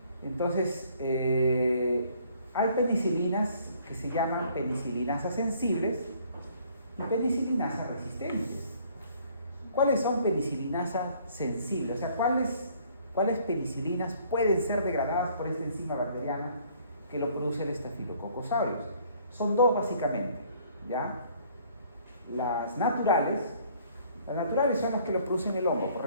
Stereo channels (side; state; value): both; inverted; correlation -0.60